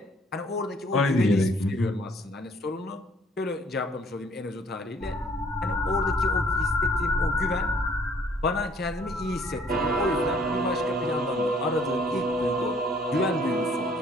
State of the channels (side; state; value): both; normal; correlation 0.60